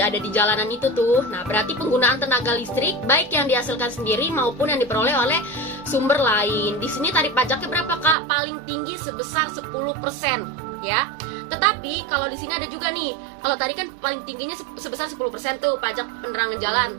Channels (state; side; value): drops out; left; at 8.2 s